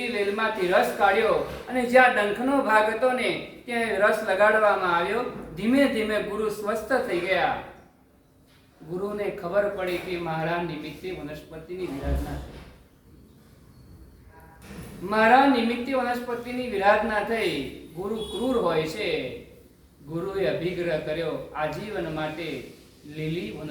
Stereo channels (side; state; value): both; identical; correlation 1.00